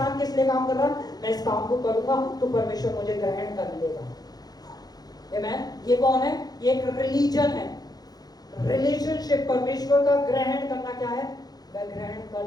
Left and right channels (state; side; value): late; right; 0.19 ms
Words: किस लिए काम कर रहा है? मैं इस काम को करूंगा तो परमेश्वर मुझे ग्रहण कर लेगा। आमेन। ये कौन है? ये एक रिलीजन है, रिलेशनशिप। परमेश्वर का ग्रहण करना क्या है? मैं ग्रहण कर